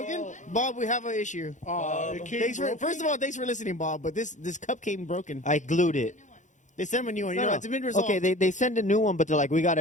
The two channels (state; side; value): late; right; 0.36 ms